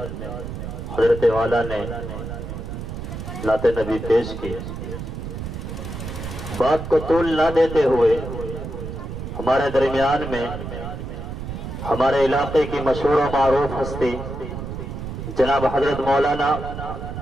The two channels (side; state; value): right; noise; rumble, 7 dB below the sound